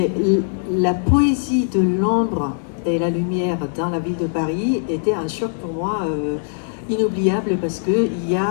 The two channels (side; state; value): right; silent; digital silence